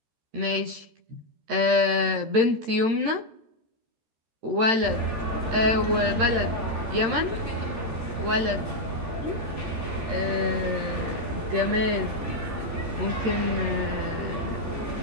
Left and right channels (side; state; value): left; late; 13 ms